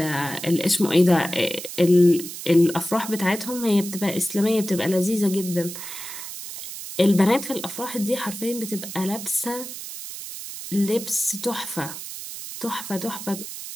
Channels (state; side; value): noise; right; hiss, 10 dB below the sound